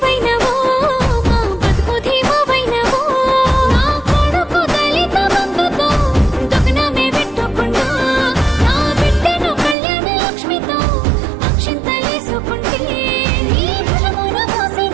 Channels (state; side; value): drops out; left; at 9.8 s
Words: వైనవో మా బతుకు ధీమా వైనవో నా కొడుకు దళిత బంధుతో దుగ్నమే పెట్టుకుంటా నా బిడ్డను కళ్యాణ లక్ష్మితో అక్షింతలేసుకుంటే నీ ఫలమున